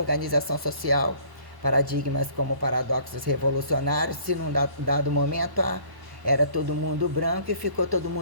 social, paradigmas como paradoxos revolucionários. Se num dado momento era todo mundo branco e ficou todo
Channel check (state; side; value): late; left; 1.1 ms